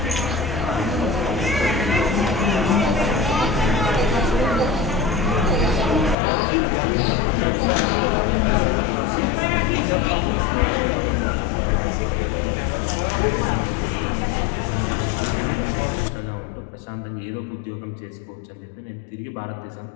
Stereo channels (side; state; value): right; drops out; at 6.2 s